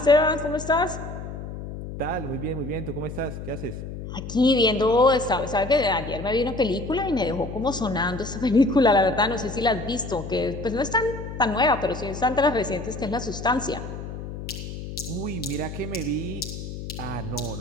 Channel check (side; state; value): left; noise; hum, 9 dB below the sound